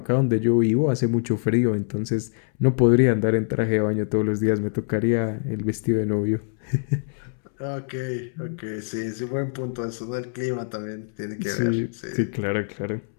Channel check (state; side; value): silent; right; 62 dB below the other